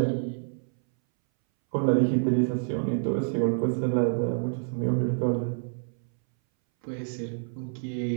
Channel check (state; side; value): silent; left; 60 dB below the other